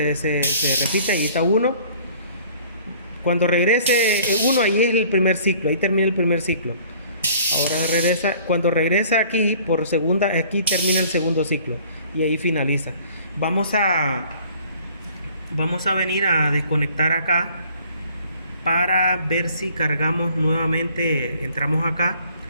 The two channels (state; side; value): inverted; both; correlation -0.53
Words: repiten. Ahí está 1. Cuando regrese 1, ahí es el primer ciclo, ahí termina el primer ciclo. Ahora regresa, cuando regresa aquí por segunda, aquí termina el segundo ciclo y ahí finaliza. Vamos a vamos a venir a desconectar acá para ver si cargamos nuevamente. Entramos acá,